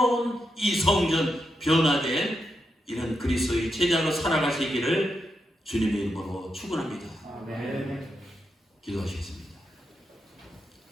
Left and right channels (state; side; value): normal; both; correlation 0.84